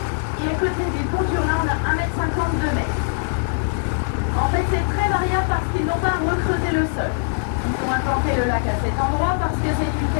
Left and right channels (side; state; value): right; silent; digital silence